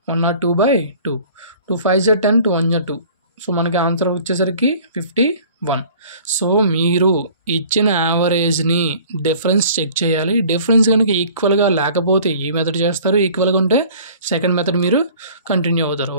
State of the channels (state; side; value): inverted; both; correlation -0.49